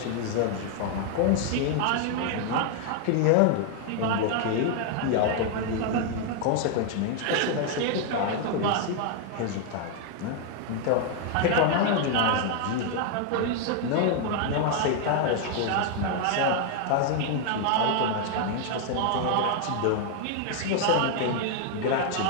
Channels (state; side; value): different; both; correlation 0.00